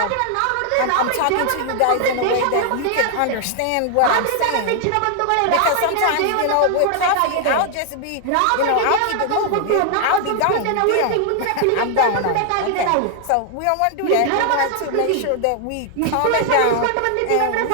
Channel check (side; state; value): both; different; correlation 0.00